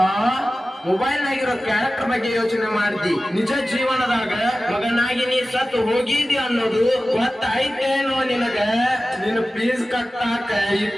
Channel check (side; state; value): both; normal; correlation 0.95